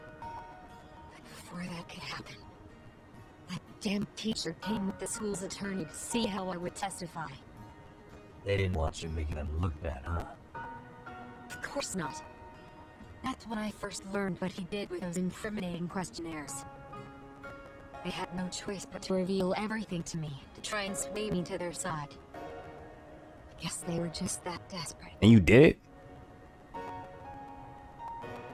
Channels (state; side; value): identical; both; correlation 1.00